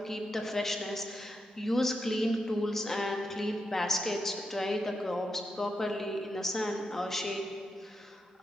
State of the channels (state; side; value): normal; both; correlation 0.85